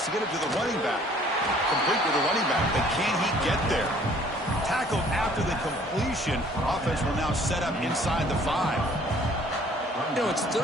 to get it to the running back. Complete with the running back, but can he get there? Tackled after the completion. Offense will now set up inside the 5. You know, it's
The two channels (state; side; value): normal; both; correlation 0.56